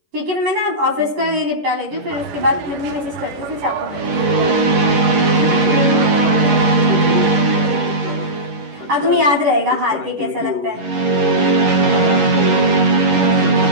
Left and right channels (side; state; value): left; late; 11 ms